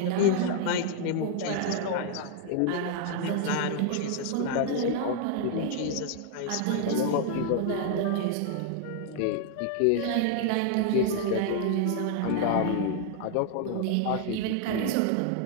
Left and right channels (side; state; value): both; different; correlation 0.00